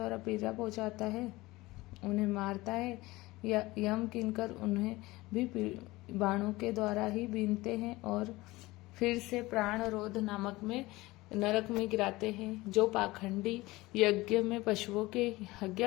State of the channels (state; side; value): quieter; right; 20.2 dB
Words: पीड़ा पहुंचाता है, उन्हें मारता है, या यम किंकर उन्हें भी बाणों के द्वारा ही बीनते हैं और फिर से प्राण रोध नामक में नरक में गिराते हैं। जो पाखंडी यज्ञ में पशुओं के